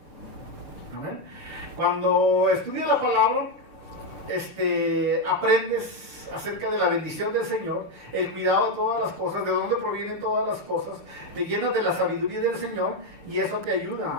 ¿Amén? Cuando estudias la palabra, aprendes acerca de la bendición del Señor, el cuidado de todas las cosas, de dónde provienen todas las cosas, te llenas de la sabiduría del Señor y eso te ayuda,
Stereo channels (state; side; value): late; left; 6.7 ms